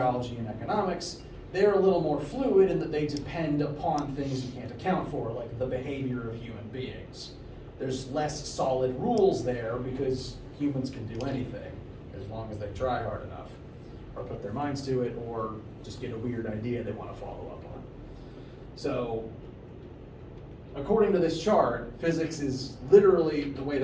and economics, they're a little more fluid in that they depend upon things you can't account for, like the behavior of human beings. There's less solid rules there because humans can do anything as long as they try hard enough or put their minds to it or just get a weird idea they want to follow up on. So according to this chart, physics is literally the way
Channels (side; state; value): both; identical; correlation 1.00